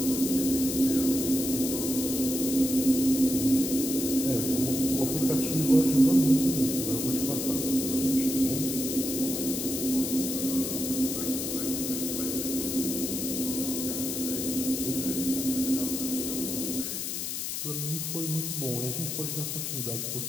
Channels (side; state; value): left; noise; hiss, 3 dB below the sound